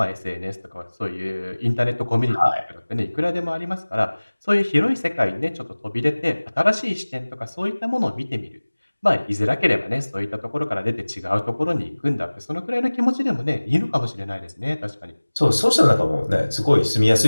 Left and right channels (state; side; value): inverted; both; correlation -1.00